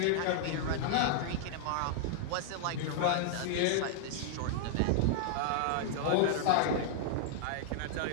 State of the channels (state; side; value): different; both; correlation -0.01